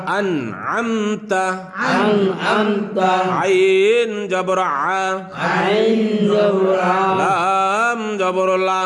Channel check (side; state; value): both; identical; correlation 1.00